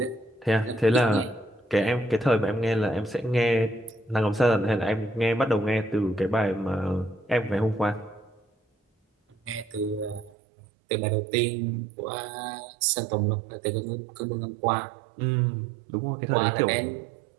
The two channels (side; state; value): left; drops out; at 10.3 s